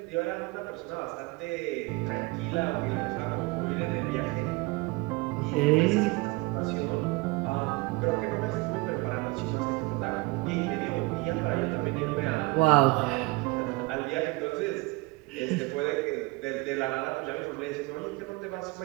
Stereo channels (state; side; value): quieter; left; 23.8 dB